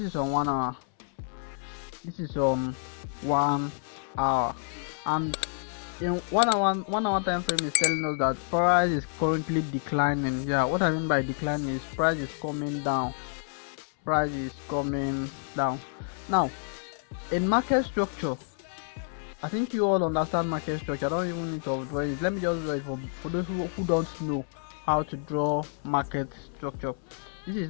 is on 1 hour. This is on 1 hour, and in 1 hour time frame is telling us that price is currently declining. Yeah, what I mean by declining is price is coming down. price is coming down. Now, in market structure, I think you all understand market structure. I don't even need to draw it. Let me just draw it for those who don't know how to draw market structure. This is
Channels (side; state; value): right; silent; 59 dB below the other